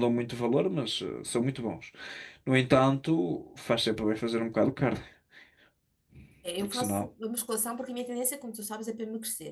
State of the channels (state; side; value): identical; both; correlation 1.00